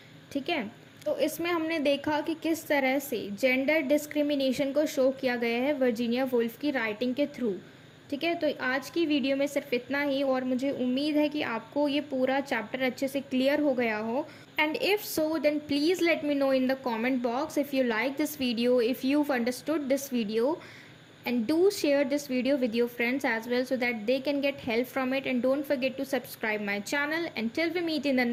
ठीक है। तो इसमें हमने देखा कि किस तरह से जेंडर डिस्क्रिमिनेशन को शो किया गया है वर्जीनिया वुल्फ की राइटिंग के थ्रू, ठीक है। तो आज की वीडियो में सिर्फ इतना ही, और मुझे उम्मीद है कि आपको ये पूरा चैप्टर अच्छे से क्लियर हो गया हो। And if so then please let me know in the comment box if you like this video, if you understood this video, and do share this video with your friends as well so that they can get help from it. And don't forget to subscribe my channel. Until we meet in the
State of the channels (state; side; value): identical; both; correlation 1.00